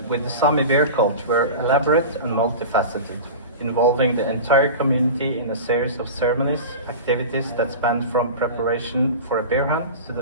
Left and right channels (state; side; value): inverted; both; correlation -0.31